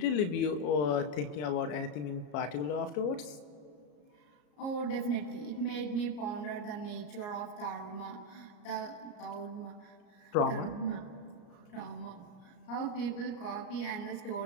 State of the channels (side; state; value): right; late; 34 ms